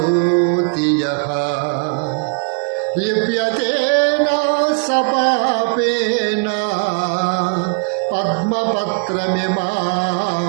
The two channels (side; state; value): left; quieter; 38.4 dB